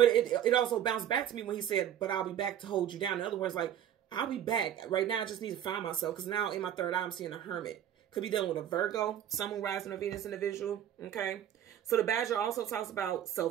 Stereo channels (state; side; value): quieter; left; 10.4 dB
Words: it also bounced back to me when he said, but I'll be back to hold you down. In other words, like, I'll be back. Right now, I just need to find myself, because now in my third eye, I'm seeing a hermit. Could be dealing with a Virgo, Sun, Moon, Rising, or Venus individual. Okay. So the badger also talks about